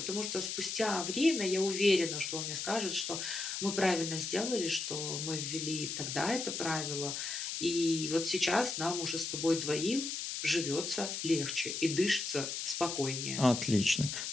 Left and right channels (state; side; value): noise; left; hiss, 4 dB below the sound